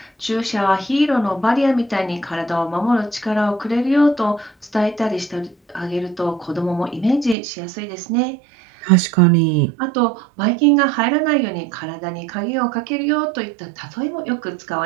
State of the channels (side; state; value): left; drops out; at 7.4 s